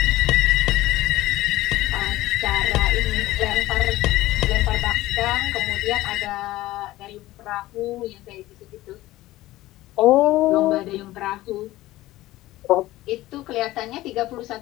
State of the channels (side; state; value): right; quieter; 16.8 dB